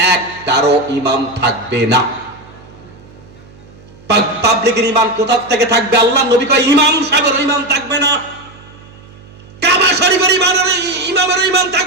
একটারও ইমাম থাকবে না। পাবলিকের ঈমান কোথা থেকে থাকবে? আল্লাহ নবী কয় ইমাম সাহেবের ঈমান থাকবে না, কাবা শরীফের ইমামের ঈমান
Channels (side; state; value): right; noise; hum, 23 dB below the sound